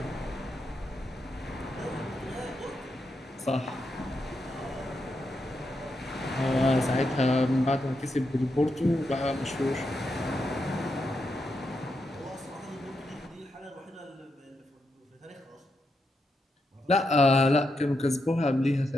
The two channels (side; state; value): both; normal; correlation 0.84